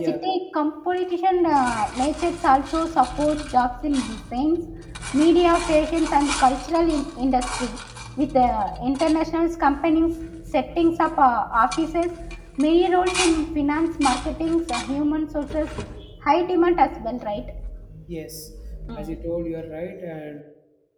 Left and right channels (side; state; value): both; identical; correlation 1.00